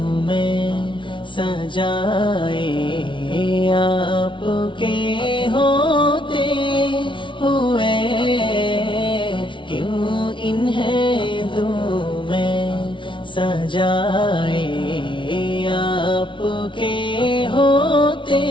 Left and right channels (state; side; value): late; right; 0.24 ms